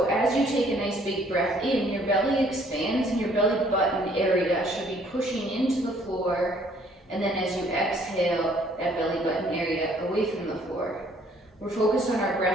as you take a nice big breath in, your belly expands and your belly button area should be pushing into the floor. And then as you exhale, that belly button area away from the floor. We're focused on our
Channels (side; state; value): both; normal; correlation 0.61